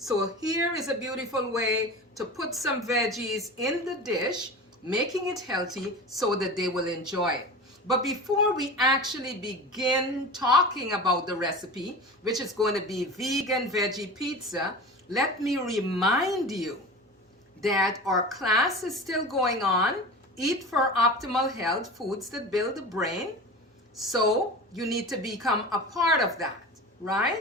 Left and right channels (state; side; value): normal; both; correlation 0.32